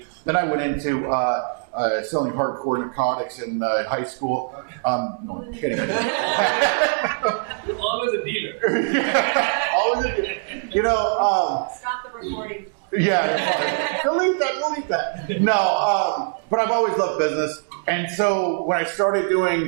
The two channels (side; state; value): left; silent; digital silence